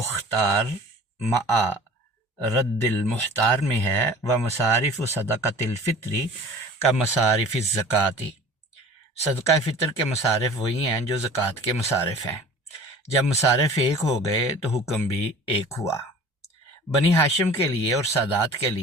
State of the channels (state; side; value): normal; both; correlation 0.44